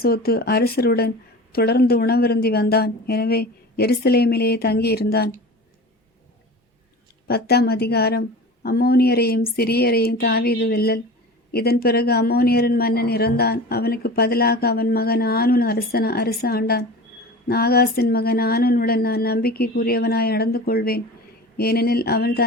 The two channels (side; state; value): both; normal; correlation 0.35